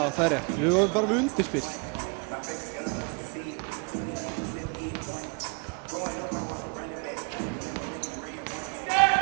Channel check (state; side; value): quieter; left; 34.8 dB